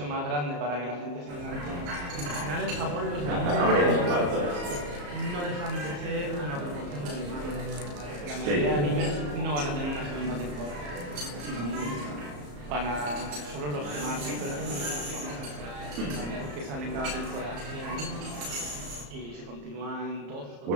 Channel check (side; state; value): left; late; 34 ms